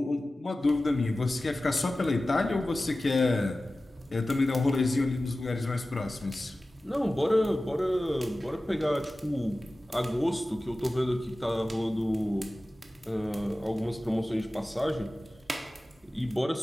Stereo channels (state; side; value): normal; both; correlation 0.96